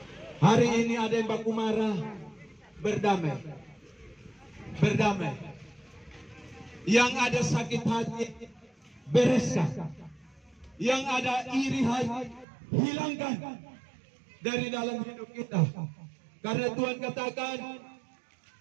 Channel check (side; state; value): left; drops out; at 12.5 s